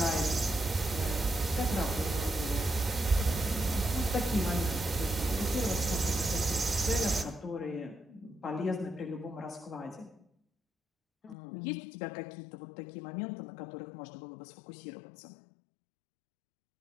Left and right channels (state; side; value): drops out; right; at 11.4 s